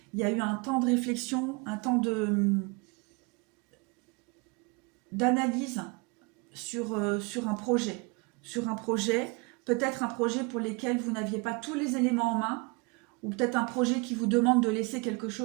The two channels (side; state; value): left; quieter; 27.8 dB